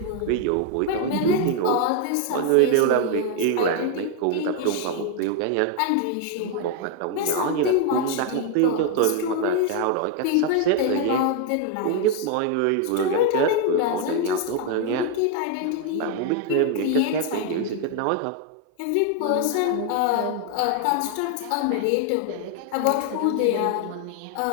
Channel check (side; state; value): both; different; correlation 0.01